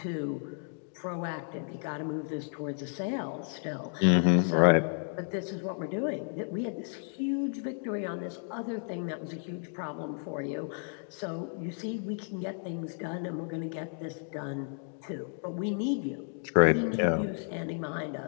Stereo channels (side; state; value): right; silent; 56 dB below the other